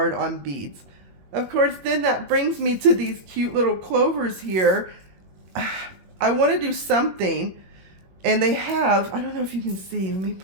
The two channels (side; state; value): left; late; 21 ms